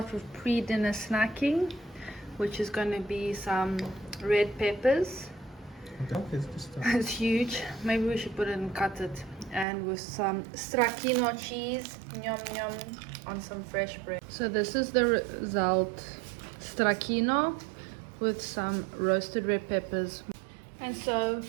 with pre-dinner snacking, which is going to be some red peppers. It's huge. Maybe we should put it and cut it. And with some stracchino cheese, yum yum, on some fresh bread. So this is the result: stracchino with some roasted red peppers. And so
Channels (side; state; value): left; drops out; at 9.7 s